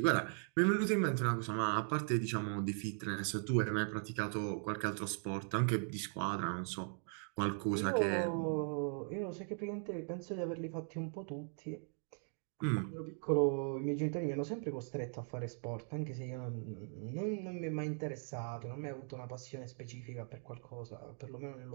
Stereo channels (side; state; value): left; silent; 52 dB below the other